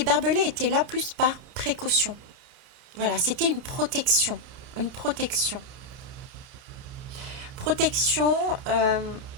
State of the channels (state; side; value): late; left; 30 ms